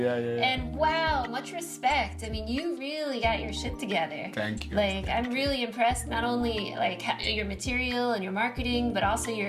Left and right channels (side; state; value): both; identical; correlation 1.00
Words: And wow, much respect. I mean, you really got your shit together. Thank you. Like, I'm really impressed, not only like your material and your marketing, but also